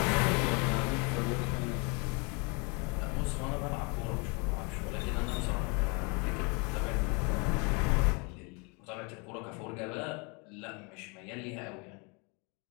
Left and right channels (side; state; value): right; quieter; 31.8 dB